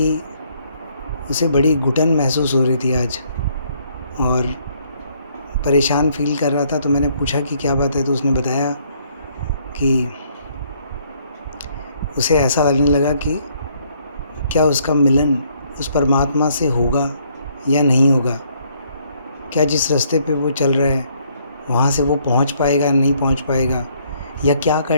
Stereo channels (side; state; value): both; inverted; correlation -0.67